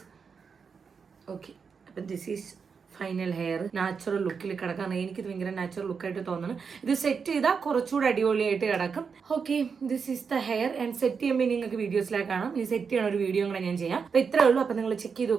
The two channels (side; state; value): left; quieter; 5.8 dB